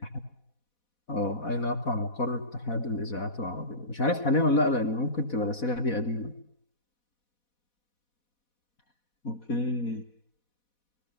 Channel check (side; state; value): right; late; 4.1 ms